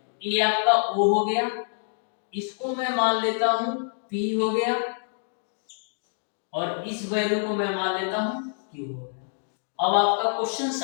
ये आपका O हो गया, इसको मैं मान लेता हूं P हो गया, और इस वैल्यू को मैं मान लेता हूं Q हो गया। अब आपका क्वेश्चन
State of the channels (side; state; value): right; silent; 61 dB below the other